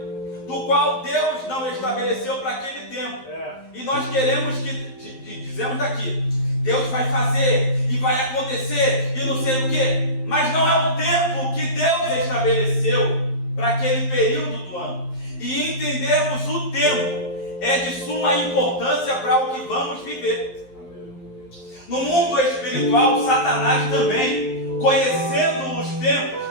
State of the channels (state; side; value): late; right; 11 ms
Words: do qual Deus não estabeleceu para aquele tempo. E nós queremos dizemos daqui, Deus vai fazer e vai acontecer e não sei o que, mas não é o tempo que Deus estabeleceu para aquele período do ano. E entendermos o tempo é de suma importância para o que vamos viver. No mundo espiritual, Satanás também, conhecendo os tempos,